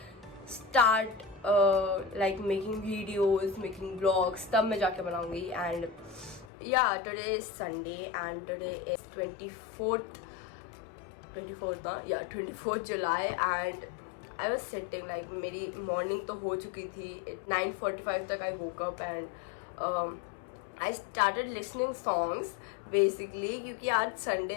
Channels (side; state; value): right; drops out; at 6.5 s